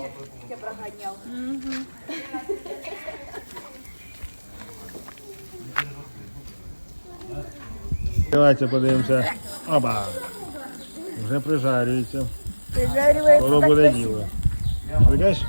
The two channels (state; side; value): inverted; both; correlation -1.00